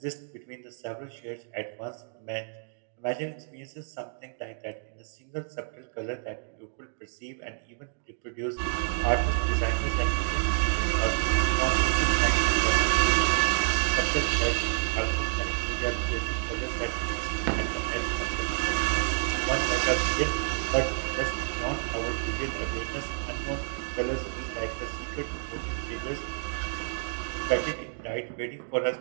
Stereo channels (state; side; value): silent; left; digital silence